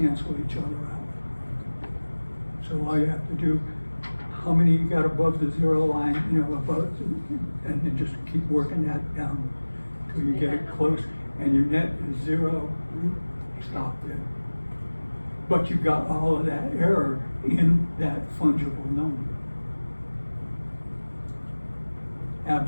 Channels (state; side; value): inverted; both; correlation -1.00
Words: each other out. So all you have to do, how many you got above the zero line, above, and then just keep working that down till you get it close, and your net is zero, stop there. But you got all of that error in that fungible number.